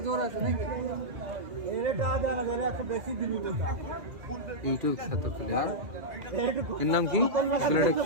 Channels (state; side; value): late; left; 2.0 ms